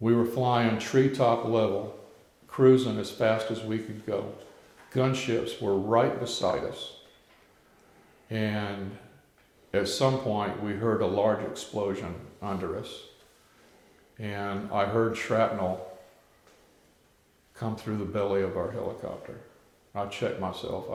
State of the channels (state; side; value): identical; both; correlation 1.00